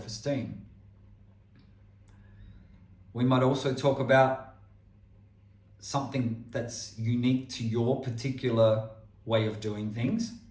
We might also talk about something that's unique to your particular way of doing things,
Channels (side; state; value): both; identical; correlation 1.00